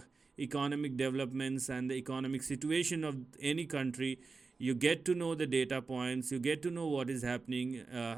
economic developments and the economic situation of any country, you get to know the data points, you get to know what is happening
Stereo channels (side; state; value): left; quieter; 4.3 dB